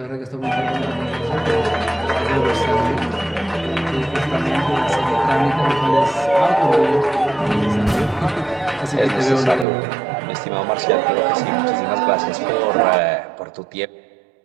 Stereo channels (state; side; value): drops out; left; at 9.7 s